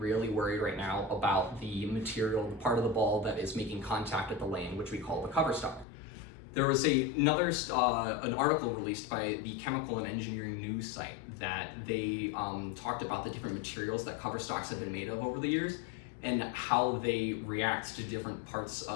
worried right now about the material, the part of the ball that is making contact at the lane, which we call the cover stock. There was an article released by the Chemical and Engineering News site that they talked about the different materials that cover stocks have been made of over the years and how they react to different parts,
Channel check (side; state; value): right; drops out; at 5.9 s